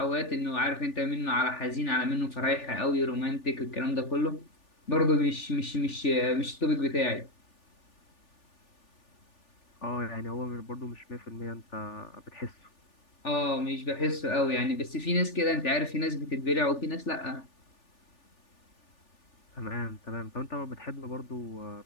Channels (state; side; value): late; right; 3.4 ms